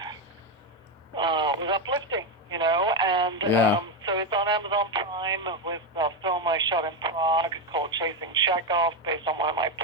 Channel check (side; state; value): both; normal; correlation 0.09